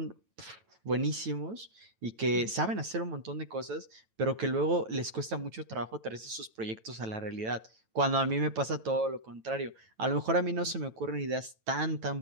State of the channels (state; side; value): late; left; 9.1 ms